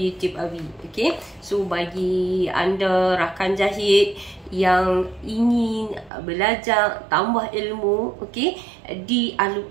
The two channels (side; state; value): left; drops out; at 6.1 s